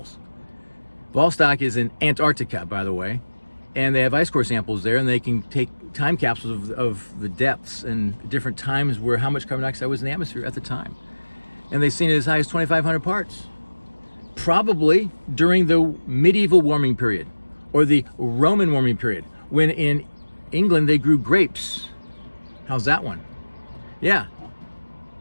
Vostok is in Antarctica, by the way, and they have ice core samples there, and they can take time capsules of the depths and different times where how much carbon dioxide was in the atmosphere at the time. And they've seen it as high as 2,500 parts. Probably during the medieval warming period or the Roman warming period, when in England they grew grapes. How's that one? Yeah.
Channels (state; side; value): inverted; both; correlation -1.00